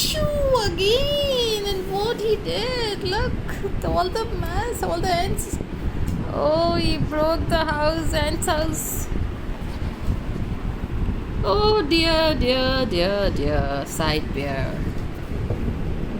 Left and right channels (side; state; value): both; identical; correlation 1.00